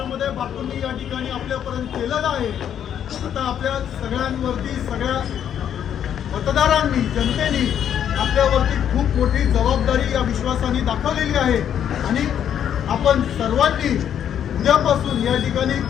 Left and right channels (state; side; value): quieter; right; 9.4 dB